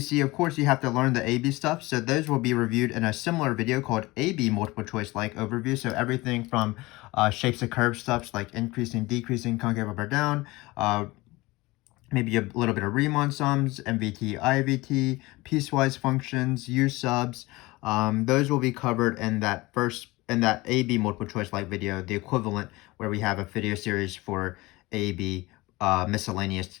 of course, you have to learn the AB stuff. So those will be reviewed in a similar video called AB multiple choice like overview. So everything from shapes of curve stuff like increasing, decreasing, concave up or down, maybe a little bit of Riemann sums, MVT, IVT, piecewise functions, U subs. Those will be covered in that AB multiple choice like video, the equivalent where we have a video series for AB miscellaneous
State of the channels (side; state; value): right; quieter; 21.2 dB